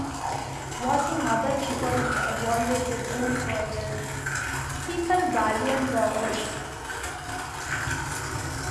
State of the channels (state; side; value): identical; both; correlation 1.00